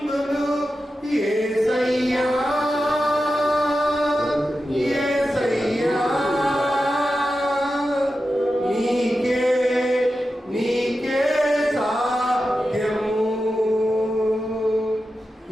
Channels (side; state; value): both; normal; correlation 0.91